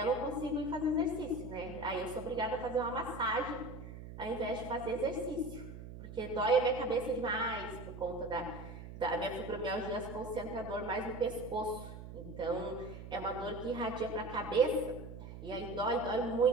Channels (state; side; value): noise; right; hum, 11 dB below the sound